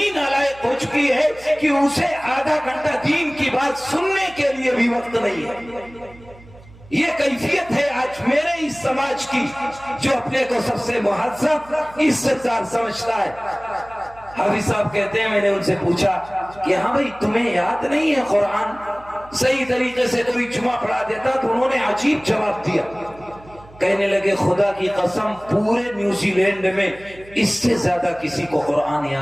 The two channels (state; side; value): noise; right; hum, 22 dB below the sound